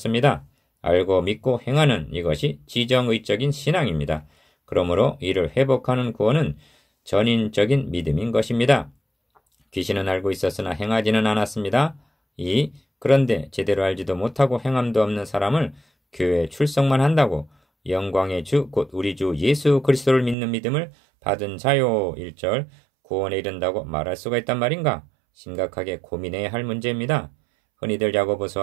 알고 믿고 행하는 이것이 지정의적인 신앙입니다. 그러므로 이를 회복하는 구원은 전인적인 믿음인 것입니다. 귀신은 알고 있었으나 행하지는 않았습니다. 2. 그런데 제대로 알지도 못하고 행함도 없는 사람을 교회에 출석만 한다고 영광의 주 곧 우리 주 예수 그리스도를 믿는 믿음을 받은 자요 1절 구원에 이른다고 말할 수가 있단 말인가? 심각하게 고민해야 할 문제입니다. 흔히들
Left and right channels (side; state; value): left; drops out; at 20.4 s